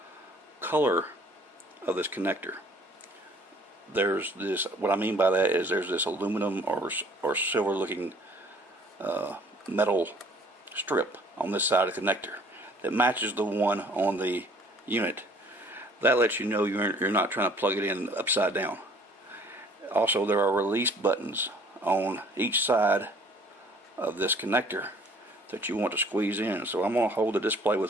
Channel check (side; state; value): both; normal; correlation 0.55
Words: color of this connector. There's this, what I mean by that is there's this aluminum or silver looking metal strip on this side of the connector that matches the one on the unit. That lets you know you're not trying to plug it in upside down. Also, there are release buttons on each side of this connector that you want to squeeze in. So I'm going to hold the display